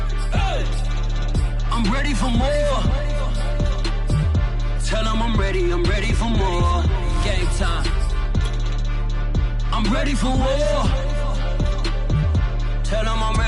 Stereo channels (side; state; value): both; identical; correlation 1.00